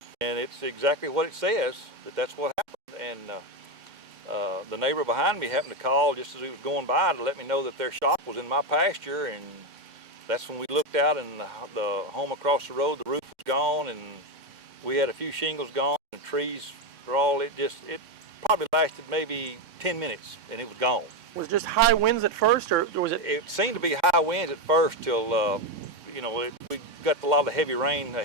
and it's exactly what it says, that's what happened. And the neighbor behind me happened to call just as he was going by to let me know that their shop was in my pasture, and that's when we looked out, and the home across the road, the roof was gone, and we had a few shingles gone, and trees were all, it probably lasted maybe 10 minutes, and it was gone. Was it just high winds at first, or was it? It seemed to be high winds at first till, we got a lot of heavy rain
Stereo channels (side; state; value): left; late; 3.6 ms